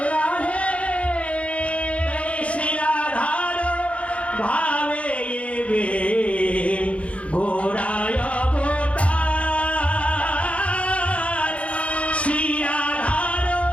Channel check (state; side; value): late; right; 0.063 ms